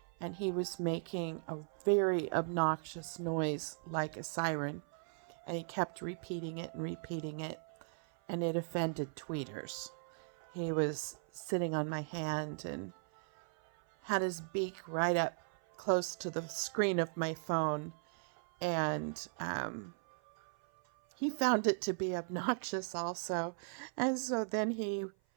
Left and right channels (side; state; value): left; silent; 53 dB below the other